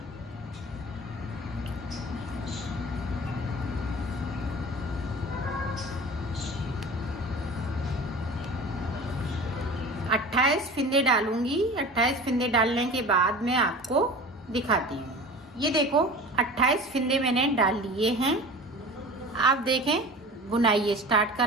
अट्ठाईस फिंदे डालूंगी। 28 फिंदे डालने के बाद मैं आपको दिखाती हूँ। ये देखो, 28 फिंदे मैंने डाल लिए हैं। आप देखें, बुनाई स्टार्ट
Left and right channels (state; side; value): normal; both; correlation 0.38